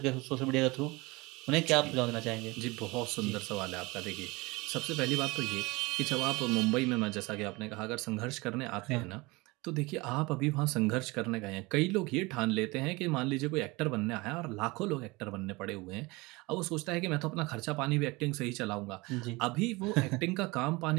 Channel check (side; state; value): left; quieter; 23.8 dB